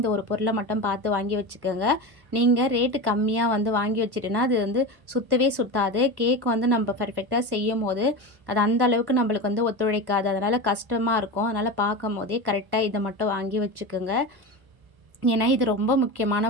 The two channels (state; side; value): late; left; 1.1 ms